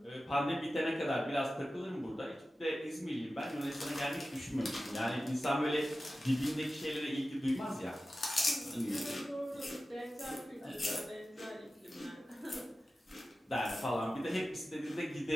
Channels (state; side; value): normal; both; correlation 0.94